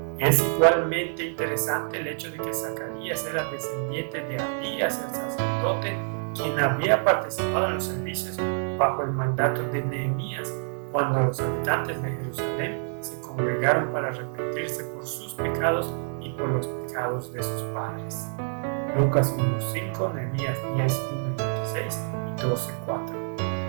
Es igualmente interesante el hecho de que Zacarías era descendiente de Abías, el sacerdote, quien había participado en los servicios bajo el mandato de Nehemías, cuando los habitantes de Jerusalén se congregaron para arrepentirse por sus pecados y por los pecados de sus padres. Lucas 1:5, Nehemías 10:1 y 26 y 12:4.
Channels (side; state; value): left; silent; 60 dB below the other